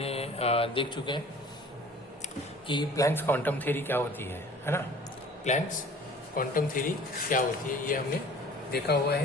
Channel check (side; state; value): both; normal; correlation 0.47